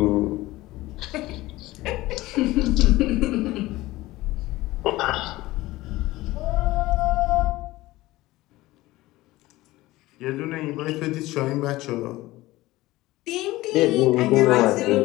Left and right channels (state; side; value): quieter; right; 18.3 dB